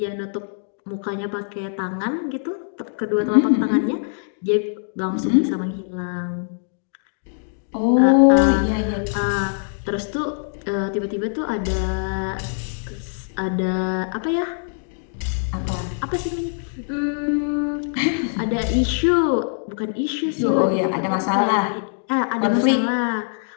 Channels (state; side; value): silent; right; digital silence